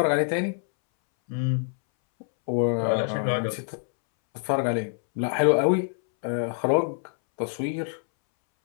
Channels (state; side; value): silent; right; 61 dB below the other